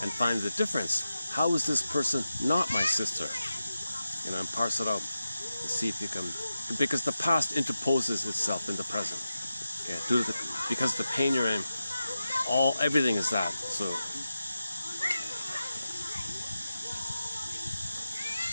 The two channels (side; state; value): both; inverted; correlation -0.92